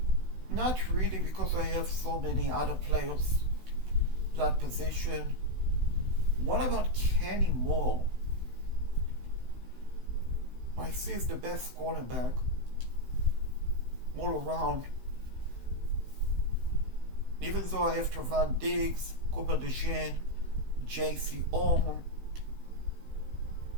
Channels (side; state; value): left; late; 16 ms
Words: Not really, because I have so many other players that position. What about Kenny Moore? I see he's the best cornerback all around. Even though I have Trevon Diggs, Cooper DeJean, J.C. Orman,